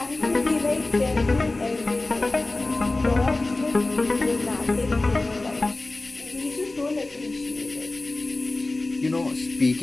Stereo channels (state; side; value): quieter; right; 3.0 dB